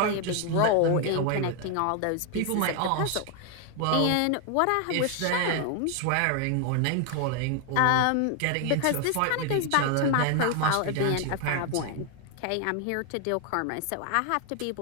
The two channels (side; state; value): both; different; correlation 0.01